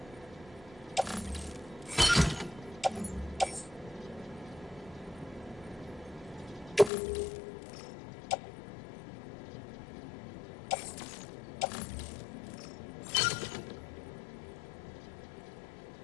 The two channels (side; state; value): right; drops out; at 6.9 s